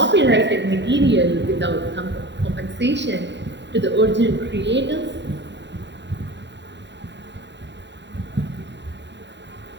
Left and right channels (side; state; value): left; late; 0.52 ms